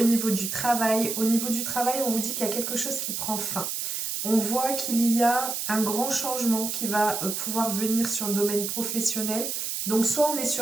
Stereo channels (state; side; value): noise; right; hiss, 3 dB below the sound